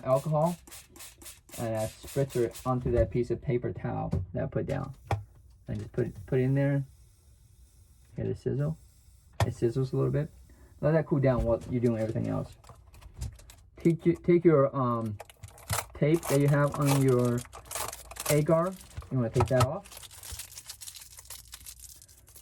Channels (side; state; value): both; identical; correlation 1.00